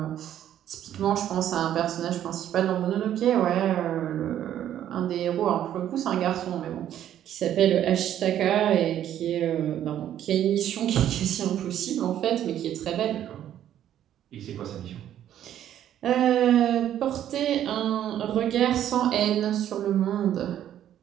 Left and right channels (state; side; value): quieter; left; 11.1 dB